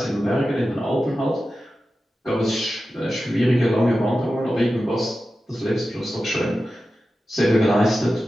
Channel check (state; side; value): normal; both; correlation 0.93